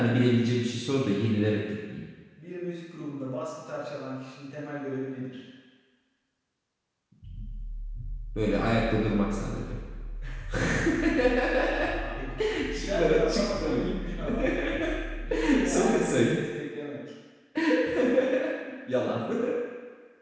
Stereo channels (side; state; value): both; identical; correlation 1.00